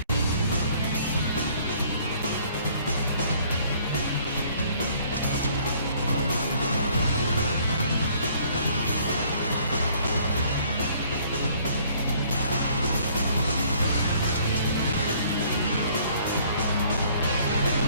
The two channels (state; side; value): inverted; both; correlation -0.59